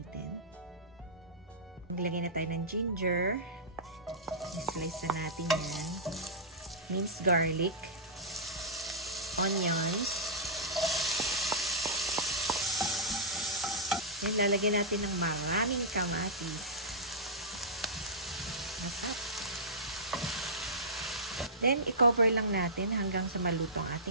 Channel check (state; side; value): normal; both; correlation -0.15